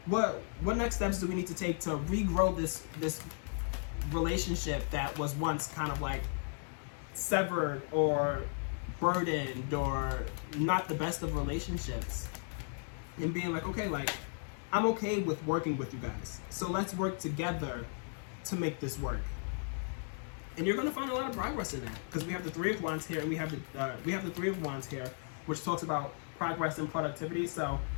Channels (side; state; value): right; silent; 54 dB below the other